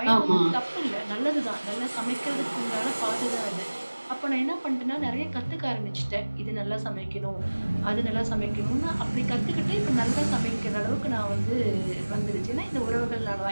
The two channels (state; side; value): inverted; both; correlation -1.00